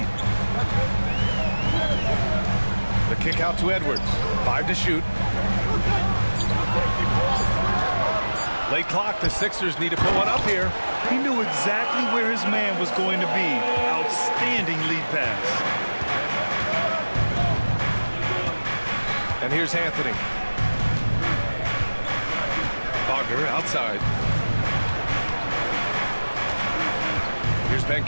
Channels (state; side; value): inverted; both; correlation -1.00